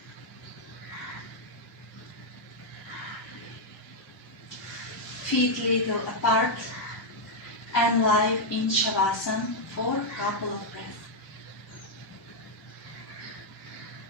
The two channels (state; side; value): normal; both; correlation -0.02